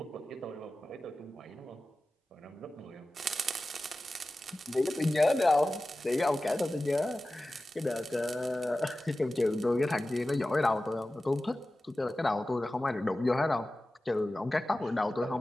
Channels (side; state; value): both; normal; correlation 0.95